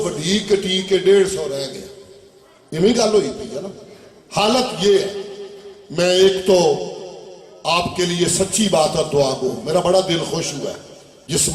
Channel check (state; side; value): identical; both; correlation 1.00